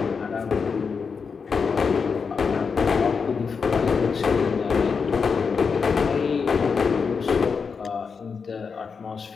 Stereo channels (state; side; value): quieter; right; 5.5 dB